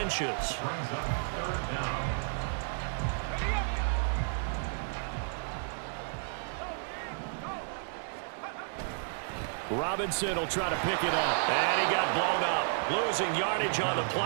brings up 3rd down. Robinson will try to pick it up. And he got blown up. Losing yardage on the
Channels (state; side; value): silent; left; digital silence